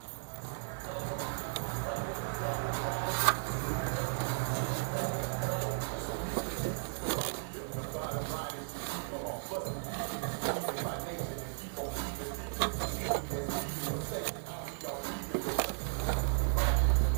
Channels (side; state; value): left; silent; digital silence